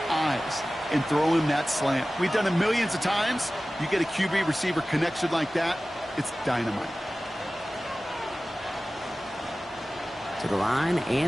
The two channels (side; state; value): both; normal; correlation 0.97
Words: eyes and throw him that slant. We've done it millions of times. You get a QB receiver connection like that, it's dynamite. To the line